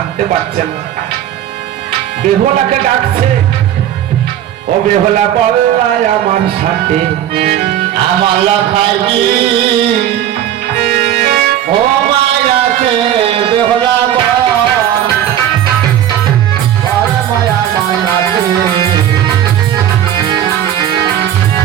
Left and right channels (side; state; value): left; quieter; 11.1 dB